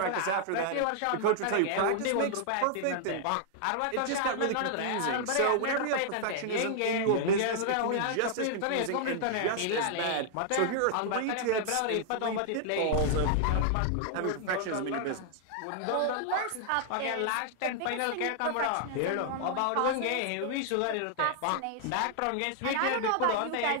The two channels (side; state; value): both; different; correlation -0.01